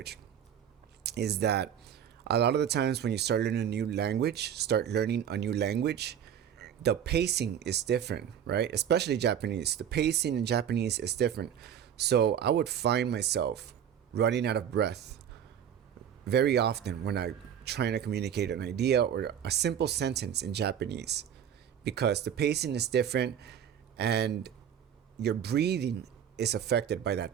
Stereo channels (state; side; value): quieter; left; 9.1 dB